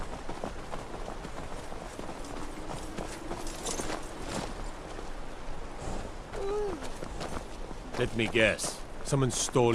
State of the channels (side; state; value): both; identical; correlation 1.00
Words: Let me guess. Someone